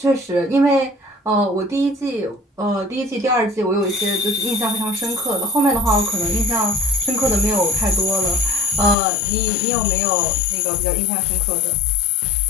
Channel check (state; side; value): drops out; right; at 9.0 s